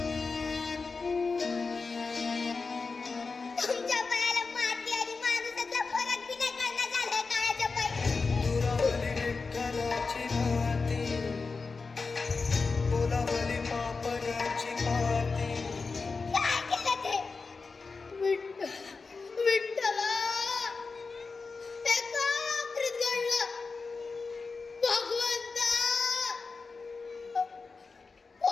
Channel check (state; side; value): quieter; right; 4.4 dB